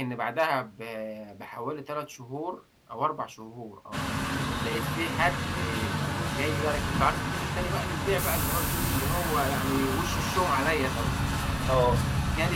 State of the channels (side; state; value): both; identical; correlation 1.00